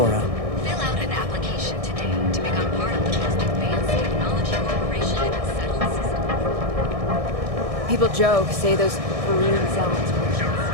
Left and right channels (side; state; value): left; late; 1.6 ms